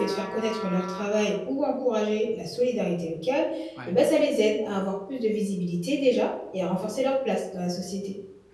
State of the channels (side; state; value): both; identical; correlation 1.00